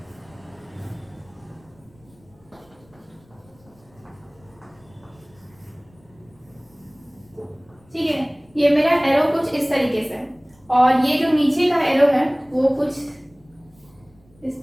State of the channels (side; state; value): left; noise; rumble, 30 dB below the sound